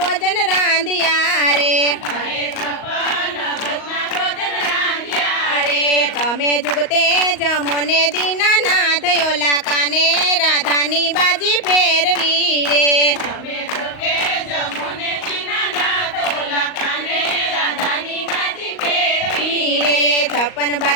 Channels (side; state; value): right; late; 38 ms